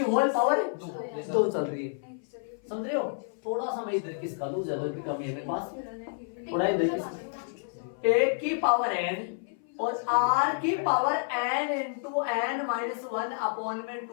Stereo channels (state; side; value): silent; right; 56 dB below the other